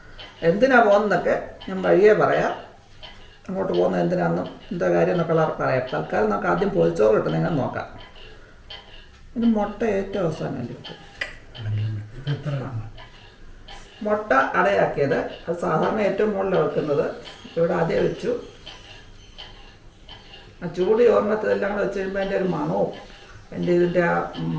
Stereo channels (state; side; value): identical; both; correlation 1.00